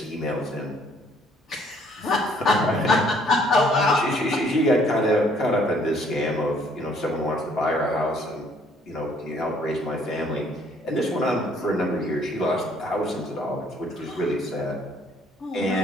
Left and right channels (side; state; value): both; normal; correlation 0.62